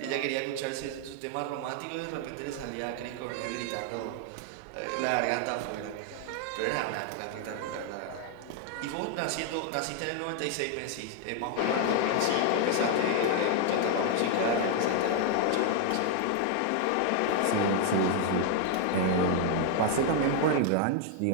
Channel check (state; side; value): different; both; correlation 0.00